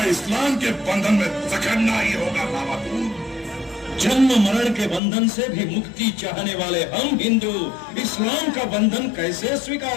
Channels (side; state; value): right; drops out; at 5.0 s